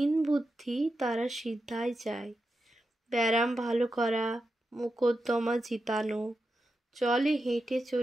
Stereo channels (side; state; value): both; normal; correlation 0.89